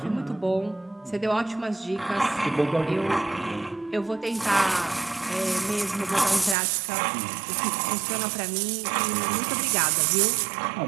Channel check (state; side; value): drops out; left; at 6.6 s